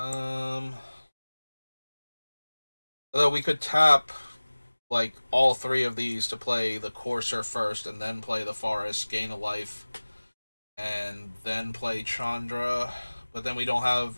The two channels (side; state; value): both; inverted; correlation -1.00